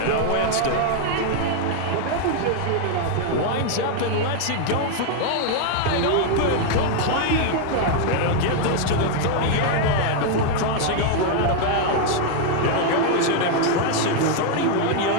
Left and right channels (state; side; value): different; both; correlation 0.00